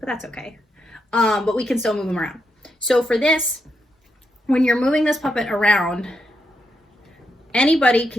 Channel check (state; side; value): normal; both; correlation 0.82